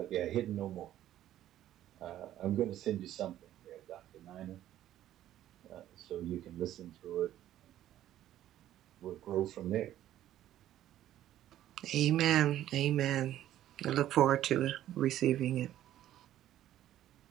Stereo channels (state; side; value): quieter; left; 12.6 dB